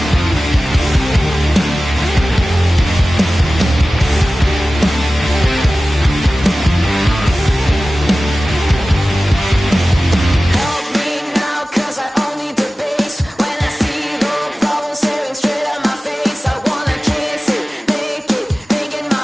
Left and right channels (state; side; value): normal; both; correlation 0.96